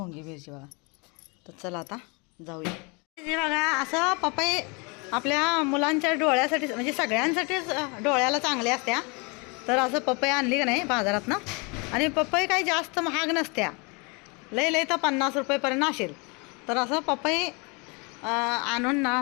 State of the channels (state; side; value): quieter; right; 30.7 dB